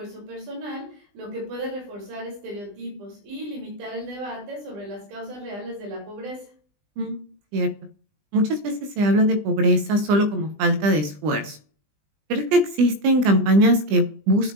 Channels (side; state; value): left; late; 20 ms